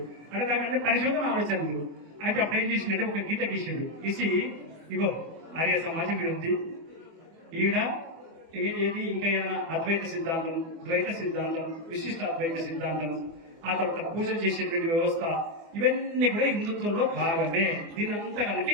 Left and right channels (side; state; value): left; late; 24 ms